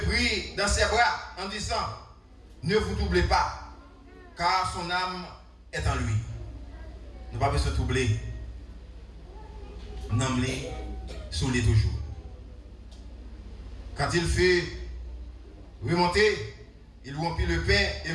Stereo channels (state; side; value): identical; both; correlation 1.00